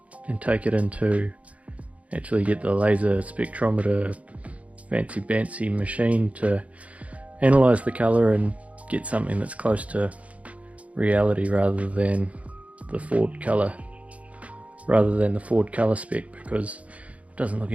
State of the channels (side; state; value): left; late; 0.066 ms